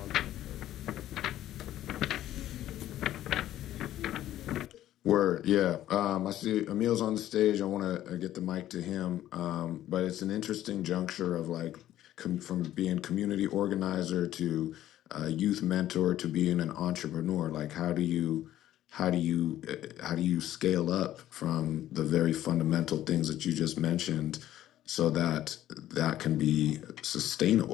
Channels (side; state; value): right; quieter; 13.0 dB